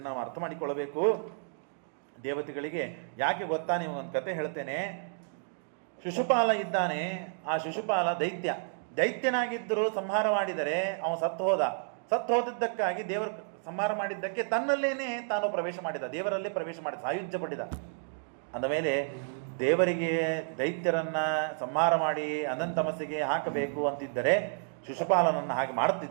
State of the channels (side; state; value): left; silent; digital silence